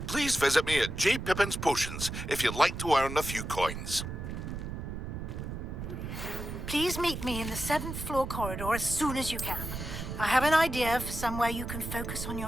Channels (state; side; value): noise; right; rumble, 6 dB below the sound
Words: Please visit me at J. Pippin's Potions if you'd like to earn a few coins. Please meet me in the 7th floor corridor as soon as you can. I have an idea for somewhere you can focus on